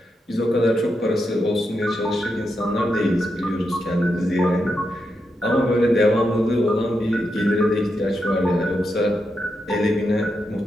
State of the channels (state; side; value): normal; both; correlation 0.85